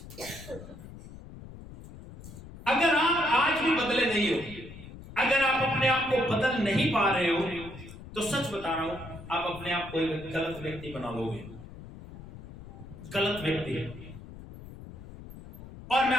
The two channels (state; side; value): noise; left; rumble, 15 dB below the sound